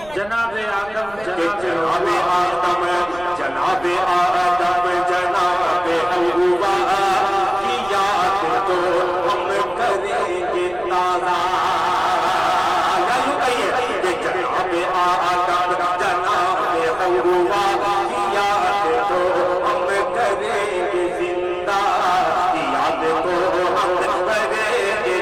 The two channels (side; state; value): right; noise; rumble, 20 dB below the sound